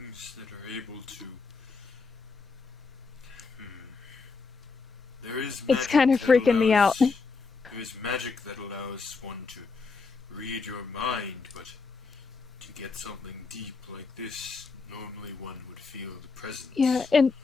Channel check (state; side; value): quieter; right; 4.6 dB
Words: that are able to. There is. It's magic kind of that freaking me out. There is magic that allows one to read your mind, but to get something deep like this, normally one would feel the presence. Yeah, and